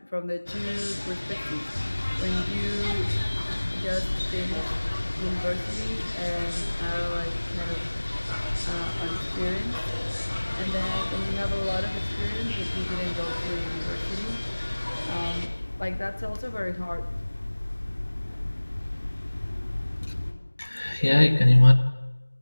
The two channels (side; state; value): both; inverted; correlation -1.00